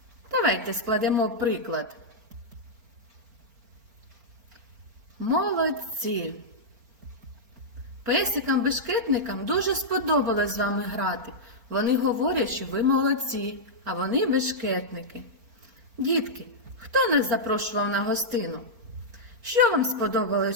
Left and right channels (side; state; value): left; late; 4.4 ms